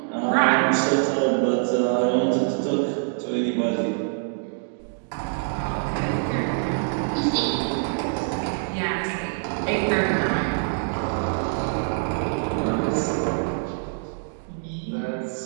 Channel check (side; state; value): left; silent; digital silence